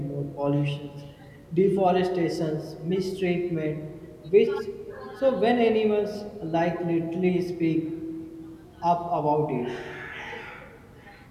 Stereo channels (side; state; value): both; identical; correlation 1.00